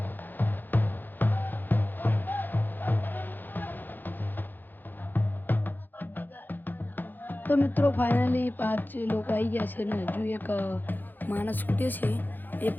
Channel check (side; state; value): right; late; 0.088 ms